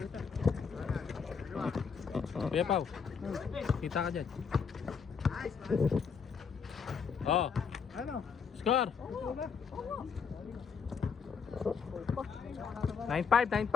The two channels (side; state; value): right; quieter; 6.1 dB